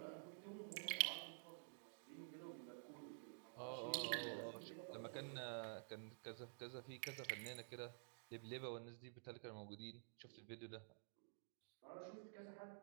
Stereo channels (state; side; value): silent; left; digital silence